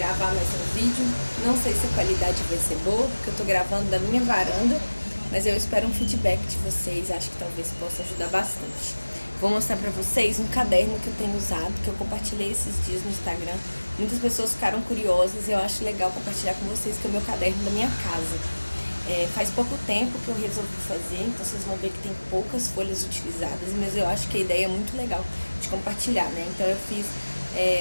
mais um vídeo. Não sei se a qualidade vai ser boa, porque eu tô gravando da minha varanda, mas eu espero um feedback de vocês, acho que talvez possa ajudar bastante. Vou mostrar pra vocês um caderno que eu tenho usado, que eu compartilhei esses dias no Instagram. Muitas pessoas ficaram curiosas e eu acho legal compartilhar com vocês, que é o meu caderno da minha casa. Faz pouco tempo que eu resolvi fazer, então vocês vão ver que tem poucas folhas utilizadas, mas eu acho que a ideia é muito legal de compartilhar, né? Então eu fiz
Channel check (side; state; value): both; inverted; correlation -1.00